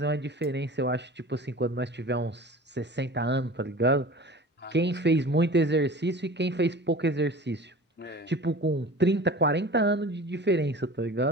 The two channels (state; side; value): normal; both; correlation 0.39